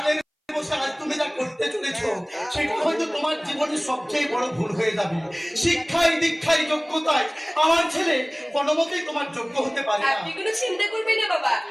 বসে আজ তুমি যা করতে চলেছো সেটা হয়তো তোমার জীবনের সবচেয়ে বড় ভুল হয়ে যাবে। শিক্ষায় দীক্ষায় যোগ্যতায় আমার ছেলে কোনোমতেই তোমার যোগ্য হতে পারে না। আপনি কোনো চিন্তা করবেন না বাবা,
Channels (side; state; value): both; identical; correlation 1.00